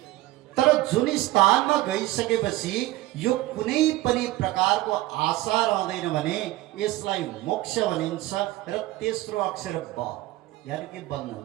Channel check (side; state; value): left; quieter; 17.4 dB